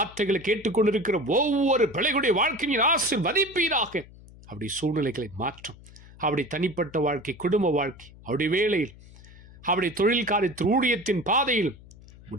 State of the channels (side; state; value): left; noise; hum, 21 dB below the sound